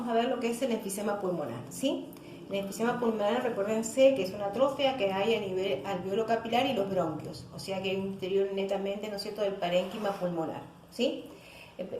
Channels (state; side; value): identical; both; correlation 1.00